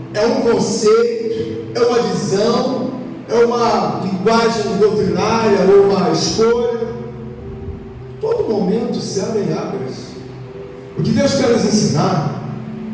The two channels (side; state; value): both; identical; correlation 1.00